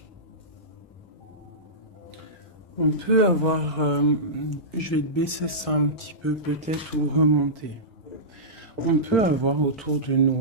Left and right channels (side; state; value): both; normal; correlation -0.17